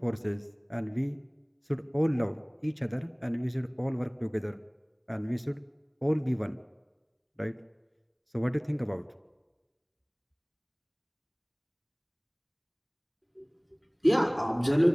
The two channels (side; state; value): both; identical; correlation 1.00